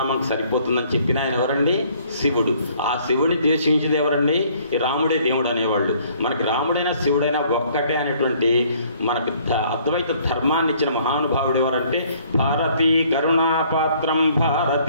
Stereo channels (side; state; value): both; inverted; correlation -0.60